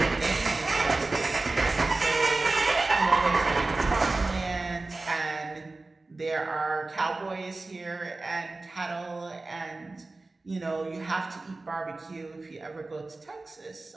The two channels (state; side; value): quieter; left; 3.3 dB